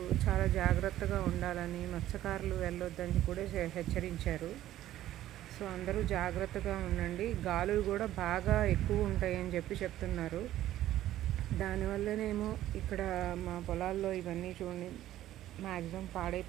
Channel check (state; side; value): quieter; left; 13.5 dB